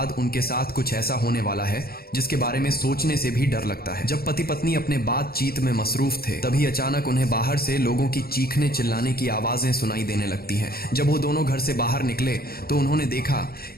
उनके साथ कुछ ऐसा होने वाला है जिसके बारे में सोचने से भी डर लगता है। जब पति पत्नी अपने बातचीत में मसरूफ थे, तभी अचानक उन्हें बाहर से लोगों की चीखने चिल्लाने की आवाजें सुनाई देने लगती हैं। जब वो दोनों घर से बाहर निकले तो उन्होंने देखा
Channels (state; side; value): late; right; 0.44 ms